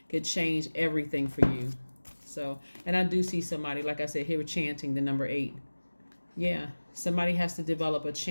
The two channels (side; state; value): both; inverted; correlation -1.00